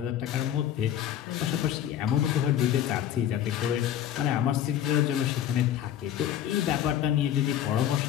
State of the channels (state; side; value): quieter; right; 10.7 dB